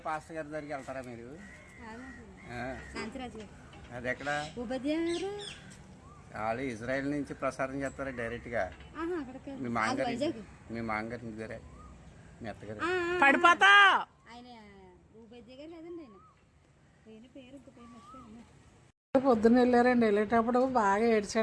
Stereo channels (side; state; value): both; identical; correlation 1.00